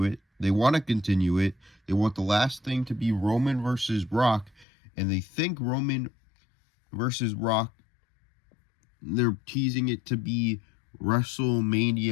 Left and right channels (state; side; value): drops out; right; at 4.7 s